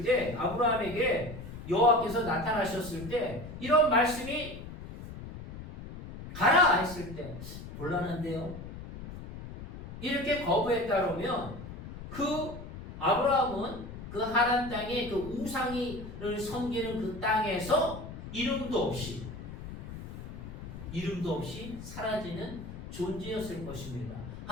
때 아브라함에게 여호와께서 나타나셨을 때 이런 말씀이 가라 했을 때 곤란한데요. 이렇게 거부했다 그러면 그 아브라함은 그 하란 땅에 그 우상을 섬기는 그 땅에서 이름도 없이 사라지는 존재였을 것입니다.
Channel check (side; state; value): left; noise; rumble, 11 dB below the sound